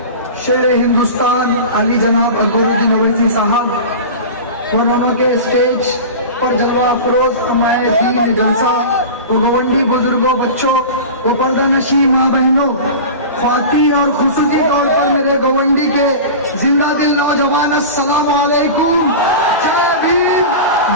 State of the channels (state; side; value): inverted; both; correlation -0.31